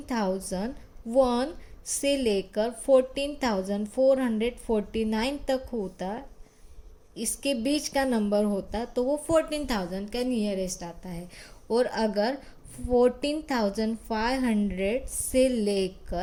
से लेकर 14,449 तक होता, इसके बीच का नंबर होता, तो वो 14,000 का नियरेस्ट आता है। और अगर 14,500 से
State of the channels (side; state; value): both; identical; correlation 1.00